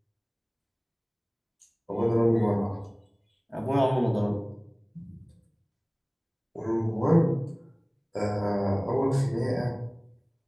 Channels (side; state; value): both; identical; correlation 1.00